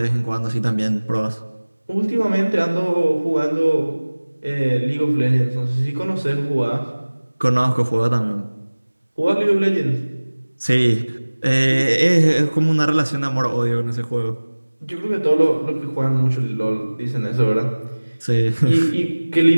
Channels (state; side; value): inverted; both; correlation -1.00